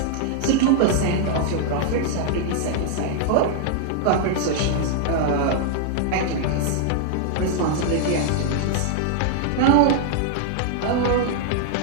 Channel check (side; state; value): both; different; correlation -0.01